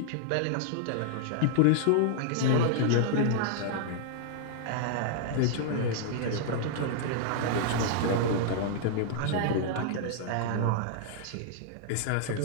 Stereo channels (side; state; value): both; different; correlation -0.01